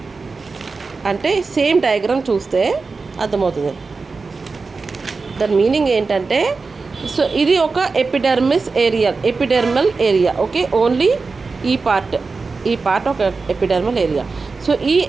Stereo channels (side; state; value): left; quieter; 4.3 dB